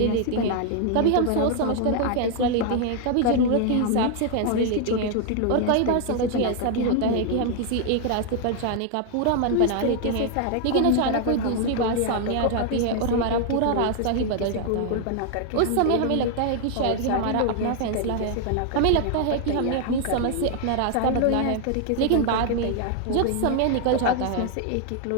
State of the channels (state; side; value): different; both; correlation 0.00